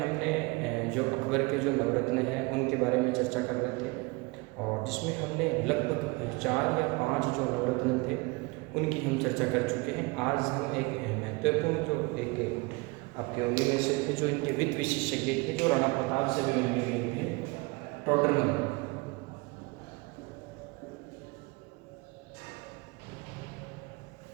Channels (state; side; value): quieter; left; 26.4 dB